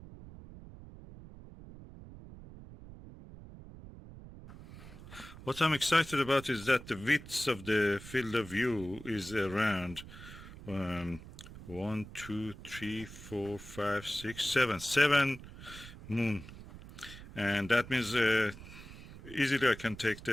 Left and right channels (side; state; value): right; noise; rumble, 15 dB below the sound